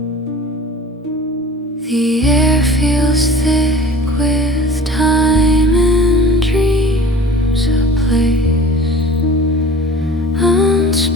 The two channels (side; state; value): both; normal; correlation 0.42